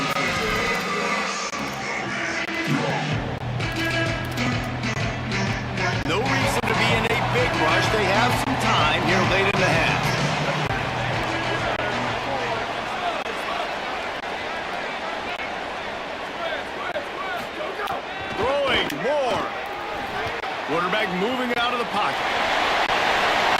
No reason to be in a big rush. They have some time here late in the half. Throwing more. Quarterback moving out of the pocket.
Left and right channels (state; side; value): identical; both; correlation 1.00